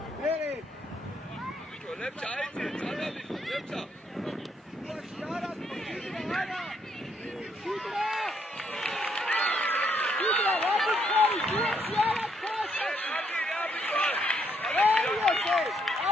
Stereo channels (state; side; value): normal; both; correlation 0.72